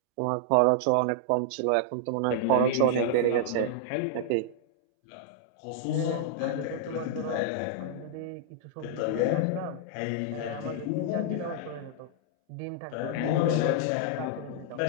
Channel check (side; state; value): both; different; correlation -0.01